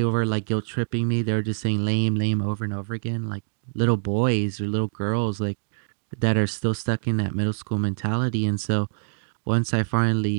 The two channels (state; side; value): silent; left; digital silence